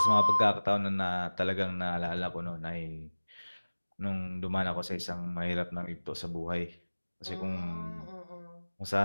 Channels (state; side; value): inverted; both; correlation -1.00